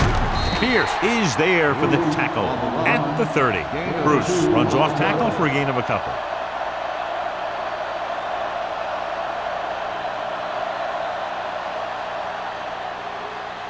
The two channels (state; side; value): identical; both; correlation 1.00